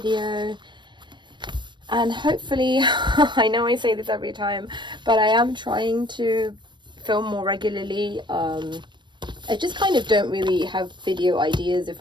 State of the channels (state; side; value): late; left; 0.22 ms